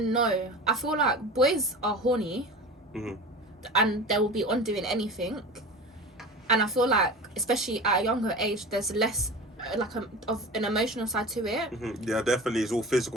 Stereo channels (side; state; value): both; normal; correlation 0.34